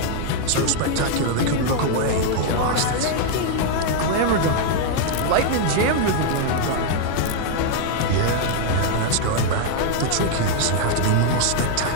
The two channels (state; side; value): different; both; correlation 0.00